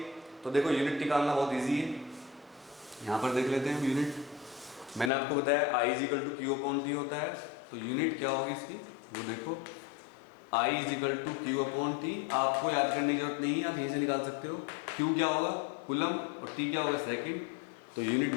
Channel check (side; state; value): right; drops out; at 5.1 s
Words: तो देखो यूनिट निकालना बहुत ईजी है। यहाँ पर देख लेते हैं यूनिट। मैंने आपको बताया I is equal to Q upon T होता है, तो यूनिट क्या होगी इसकी, वो देखो I is equal to Q upon T. आपको याद करने की जरूरत नहीं है, आप यहीं से निकाल सकते हो। Q क्या होगा, कूलम, और T क्या होगा, सेकंड। तो यूनिट